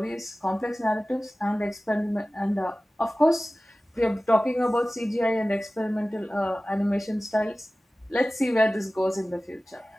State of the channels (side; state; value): both; normal; correlation 0.97